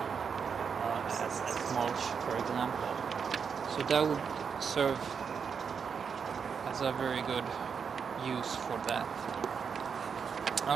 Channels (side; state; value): left; quieter; 6.4 dB